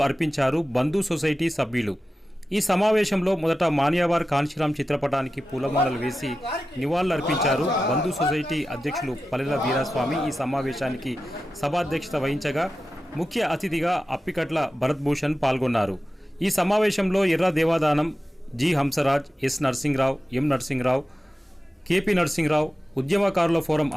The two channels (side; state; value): both; normal; correlation 0.93